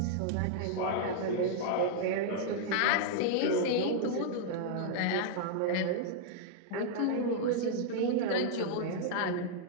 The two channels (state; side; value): different; both; correlation -0.01